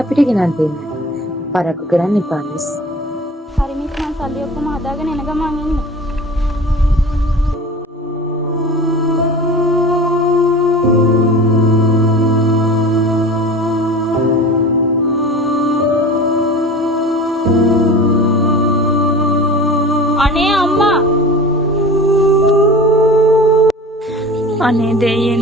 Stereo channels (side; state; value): both; normal; correlation 0.37